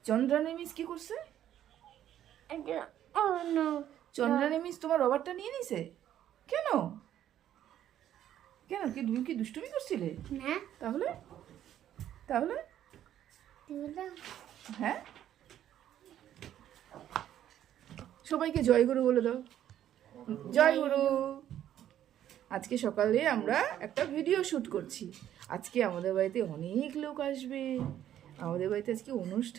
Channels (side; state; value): left; quieter; 11.2 dB